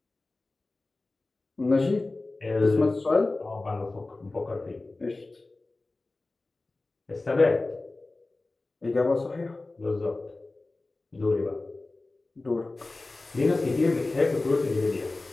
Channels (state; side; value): quieter; right; 3.2 dB